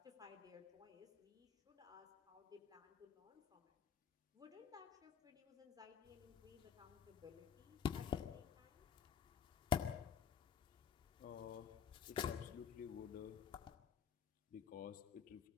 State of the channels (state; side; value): quieter; right; 7.8 dB